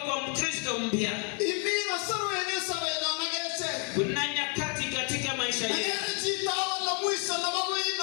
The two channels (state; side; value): quieter; right; 37.5 dB